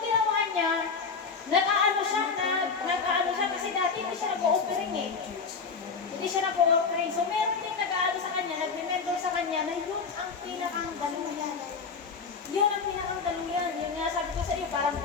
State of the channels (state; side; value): quieter; right; 5.2 dB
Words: ginawa niya, nag-aano siya kasi dati hindi siya nag-o-offering eh. Hindi siya nag-o-offering. So meron din nag-aano sa kanya, nag-mentor sa kanya na yun ang pinakang daluyan. Yun ang pinakang daluyan. Yun nga sabi ko sa iyo, parang